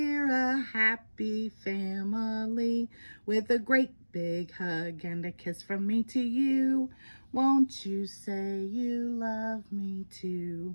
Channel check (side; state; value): both; inverted; correlation -1.00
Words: a happy family with a great big hug and a kiss from me to you. Won't you say you love me too?